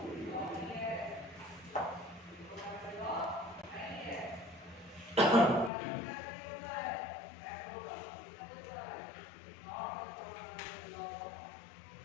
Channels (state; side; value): drops out; right; at 5.7 s